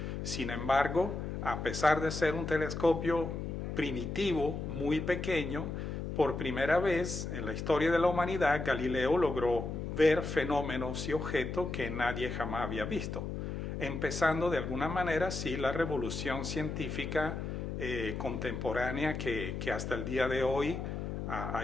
Sin embargo, a pesar de ser un telescopio primitivo, muy pequeño, por primera vez en la historia de la humanidad, Galileo logró ver fenómenos y objetos que nadie jamás había visto, empezando de alguna manera, sí, la revolución científica contemporánea que hasta el día de hoy ha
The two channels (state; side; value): noise; left; hum, 5 dB below the sound